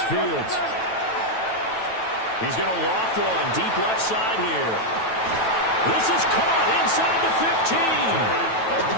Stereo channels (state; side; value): late; right; 9.1 ms